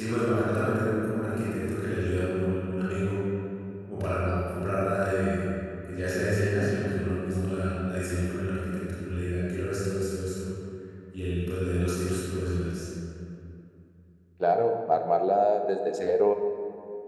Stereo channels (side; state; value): both; identical; correlation 1.00